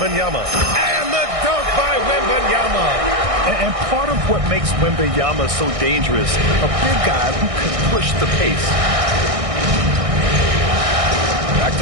And the dunk by Wembanyama. And part of what makes Wembanyama so dangerous, a big guy who can push the pace. Back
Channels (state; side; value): late; left; 1.6 ms